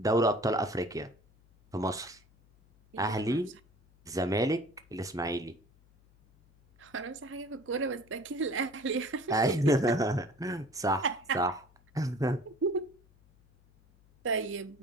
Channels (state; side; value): noise; left; hum, 30 dB below the sound